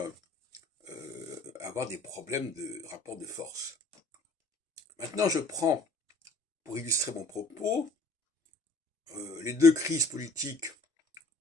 avoir des problèmes de rapport de force. Maintenant, je prends, pour illustrer mon propos, les deux crises politiques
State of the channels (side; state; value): right; quieter; 3.1 dB